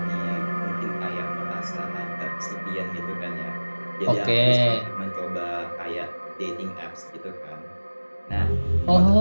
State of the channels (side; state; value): both; inverted; correlation -1.00